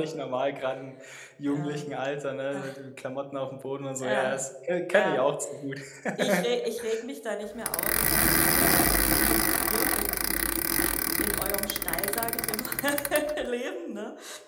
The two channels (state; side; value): identical; both; correlation 1.00